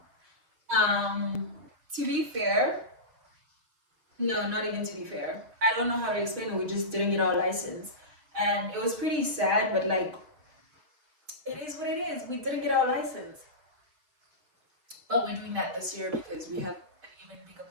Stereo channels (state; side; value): late; left; 6.0 ms